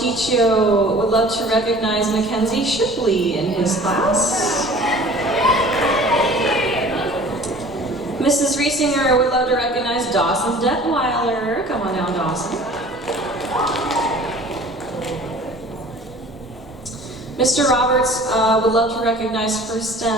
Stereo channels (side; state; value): both; normal; correlation 0.46